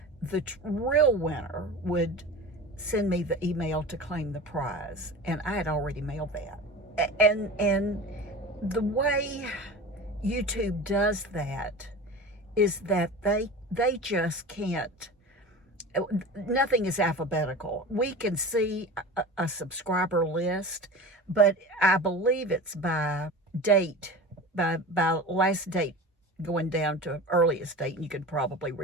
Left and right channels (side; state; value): both; normal; correlation 0.33